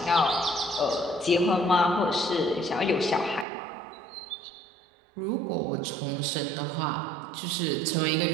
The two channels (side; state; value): left; drops out; at 3.5 s